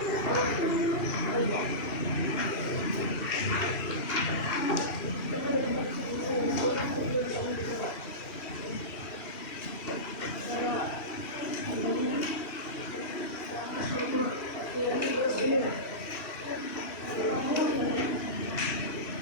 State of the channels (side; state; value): right; late; 2.8 ms